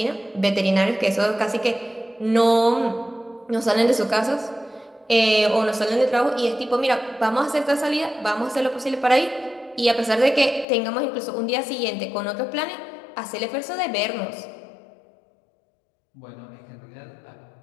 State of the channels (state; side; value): drops out; right; at 10.7 s